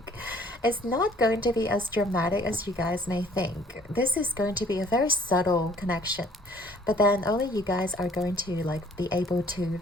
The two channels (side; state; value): both; normal; correlation 0.57